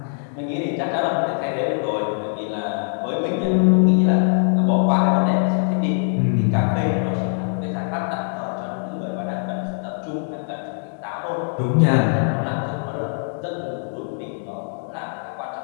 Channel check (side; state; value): right; silent; 64 dB below the other